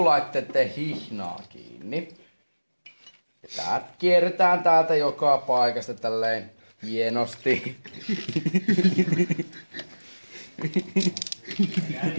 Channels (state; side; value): inverted; both; correlation -1.00